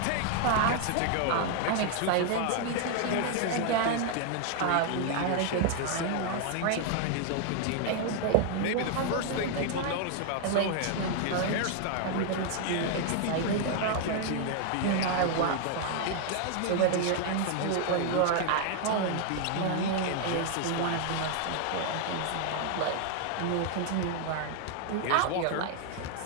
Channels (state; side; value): different; both; correlation 0.00